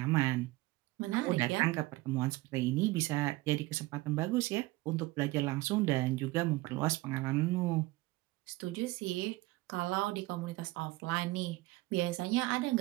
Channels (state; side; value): quieter; left; 20.3 dB